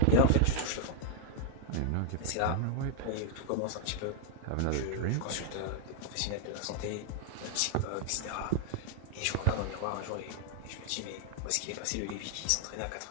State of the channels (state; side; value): different; both; correlation 0.00